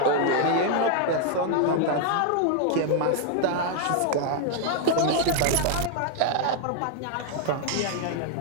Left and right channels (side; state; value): both; different; correlation 0.00